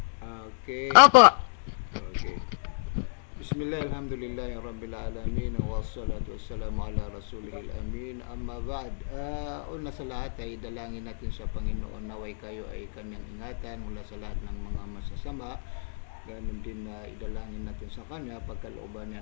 Okay. Opo. Okay. Bismillah, alhamdulillah, rabbil alamin, wassalatu wassalamu ala rasulihil amin, amma ba'd. Una sa lahat ay dalangin natin sa Panginoon naway kayo ay kanyang ingatan mula sa lahat ng mga masasama. Ganun din na idalangin natin sa kanya pagkalooban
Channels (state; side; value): silent; right; digital silence